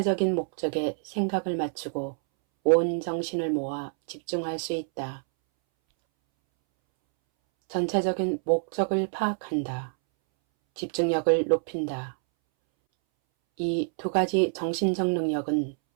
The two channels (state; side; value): silent; left; 60 dB below the other